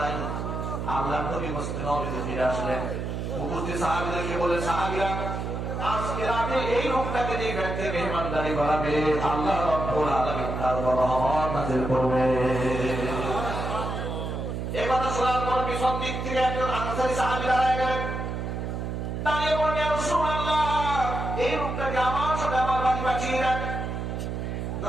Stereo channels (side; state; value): right; noise; hum, 4 dB below the sound